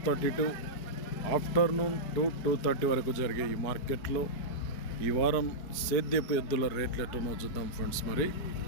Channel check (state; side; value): late; right; 4.8 ms